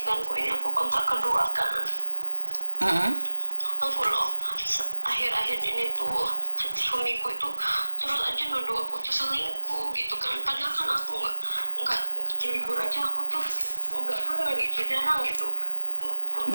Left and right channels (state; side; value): inverted; both; correlation -1.00